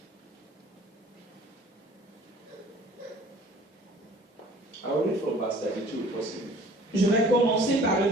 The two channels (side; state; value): both; normal; correlation 0.50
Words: I will read from verse 32 if possible. Je vais commencer par le